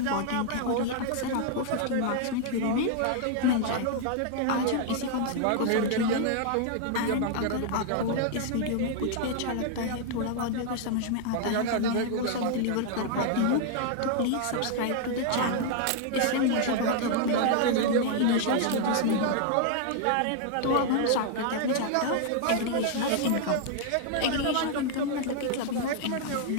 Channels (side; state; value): both; different; correlation 0.00